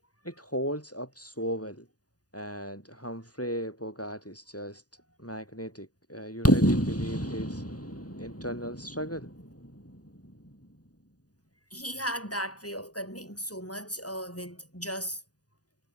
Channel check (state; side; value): late; right; 0.68 ms